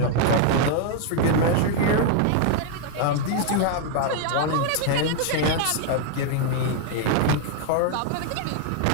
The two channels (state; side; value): different; both; correlation 0.00